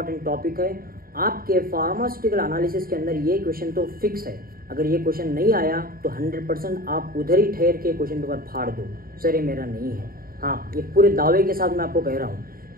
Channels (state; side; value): late; left; 0.43 ms